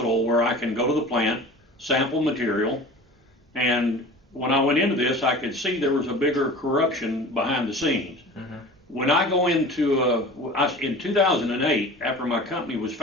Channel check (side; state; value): both; normal; correlation 0.39